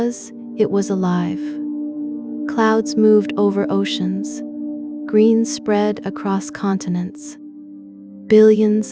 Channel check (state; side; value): identical; both; correlation 1.00